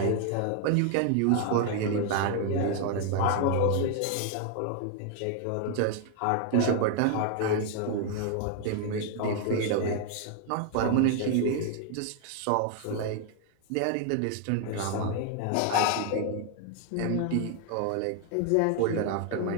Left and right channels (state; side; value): different; both; correlation 0.00